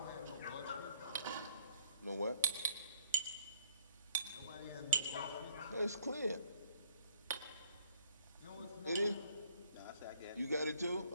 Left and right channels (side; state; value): both; inverted; correlation -0.63